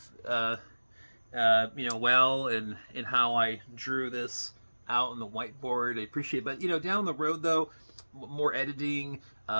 well, in how I drew this out on the whiteboard. I appreciate it. But down the road though, more editing,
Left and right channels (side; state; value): both; inverted; correlation -1.00